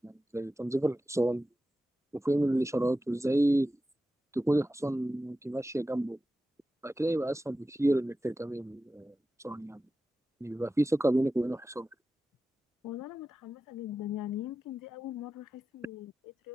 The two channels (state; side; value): normal; both; correlation 0.93